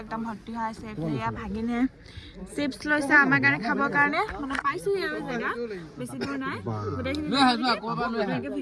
একদম ভৰ্তি হৈ আছে এফালে ভাগিনে চিপছ লৈছে আমাৰ কাৰণে খাবৰ কাৰণে মানে পাইছো আৰু জেগা বেছি দূৰ নাই গোটেইখিনি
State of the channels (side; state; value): both; identical; correlation 1.00